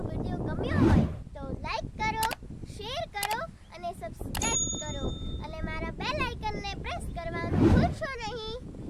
વિડિયો ગમ્યો હોય તો લાઈક કરો, શેર કરો અને સબસ્ક્રાઇબ કરો અને મારા બેલ આઇકનને પ્રેસ કરવા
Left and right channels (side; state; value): both; identical; correlation 1.00